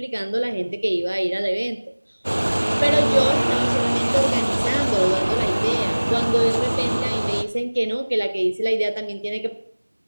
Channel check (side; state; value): both; inverted; correlation -1.00